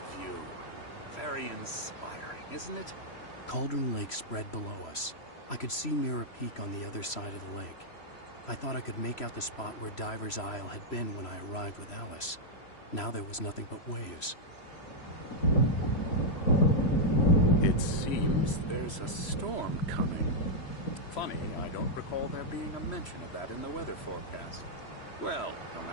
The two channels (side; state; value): right; late; 3.0 ms